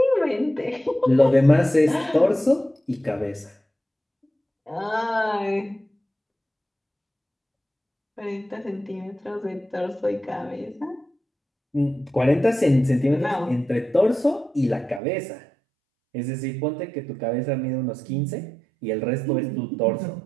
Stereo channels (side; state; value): left; drops out; at 15.0 s